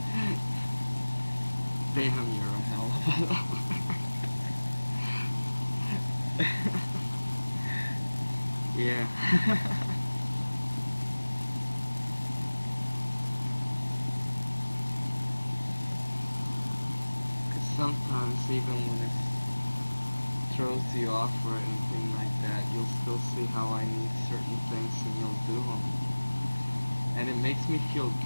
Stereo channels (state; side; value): inverted; both; correlation -1.00